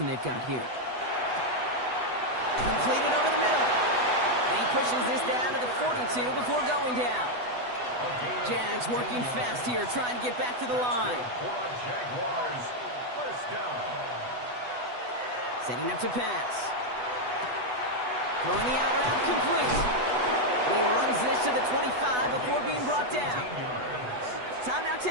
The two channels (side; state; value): left; late; 8.1 ms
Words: they've got here. Completed over the middle. And he pushes this down to the 42 before going down. Jags working fast here, trying to get back to the line. Jaguars, 1st down. Setting up to pass. Throwing the out route complete. And he runs this to the 25 before being brought down. Timeout